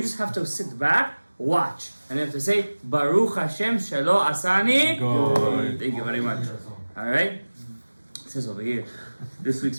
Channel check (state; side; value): inverted; both; correlation -1.00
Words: just have to sit back, watch, and have to say Baruch Hashem Shelo Asani. Good. Thank you very much. All right, it says over here, this week's